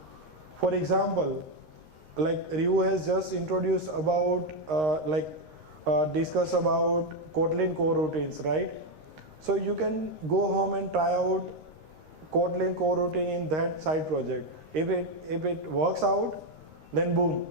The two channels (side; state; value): left; late; 13 ms